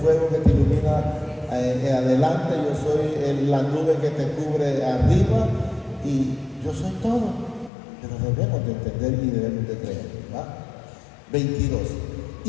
que te ilumina adelante, yo soy la nube que te cubre arriba y yo soy todo. Pero debemos de entender y debemos de creer, ¿verdad? 22.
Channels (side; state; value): right; drops out; at 7.7 s